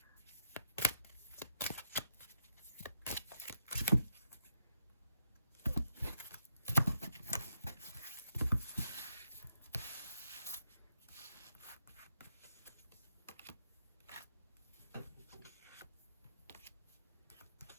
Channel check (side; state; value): both; inverted; correlation -0.79